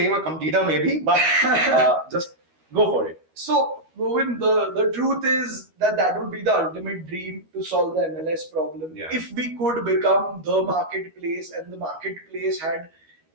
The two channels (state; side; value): late; left; 13 ms